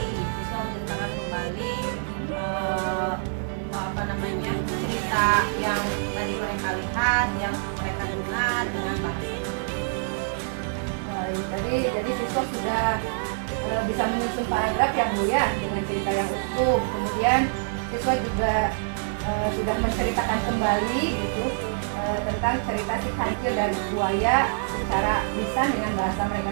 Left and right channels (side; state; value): left; silent; 60 dB below the other